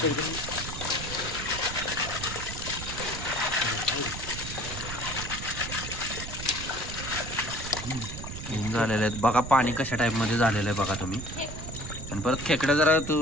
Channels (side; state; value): right; noise; rumble, 8 dB below the sound